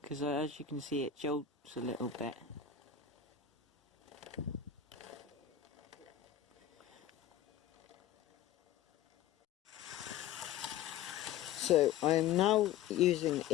because as you can see it jolts a little bit. So I am now using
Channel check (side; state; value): right; quieter; 9.3 dB